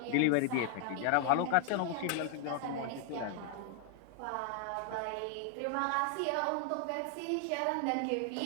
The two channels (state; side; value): different; both; correlation 0.00